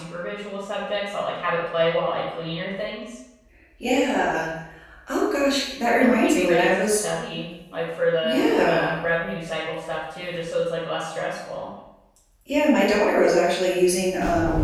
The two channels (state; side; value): identical; both; correlation 1.00